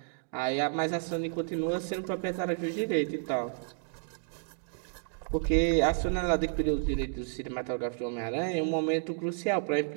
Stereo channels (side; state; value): left; silent; digital silence